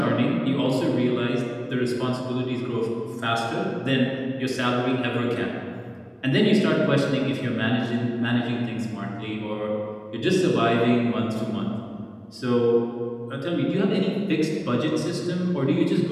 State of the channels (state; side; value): identical; both; correlation 1.00